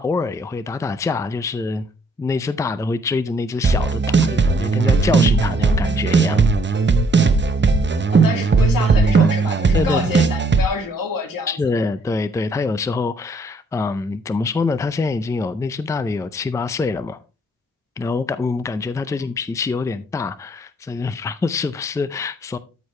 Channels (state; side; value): normal; both; correlation 0.66